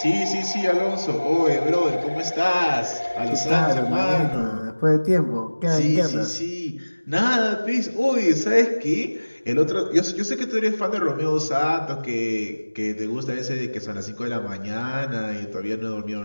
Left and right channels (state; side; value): inverted; both; correlation -1.00